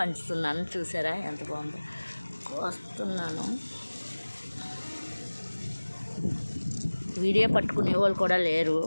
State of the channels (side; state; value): both; inverted; correlation -1.00